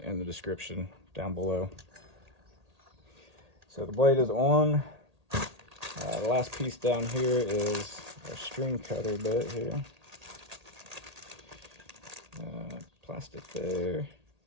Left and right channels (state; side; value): late; left; 1.8 ms